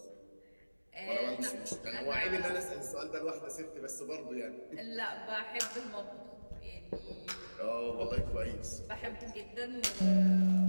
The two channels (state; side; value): inverted; both; correlation -1.00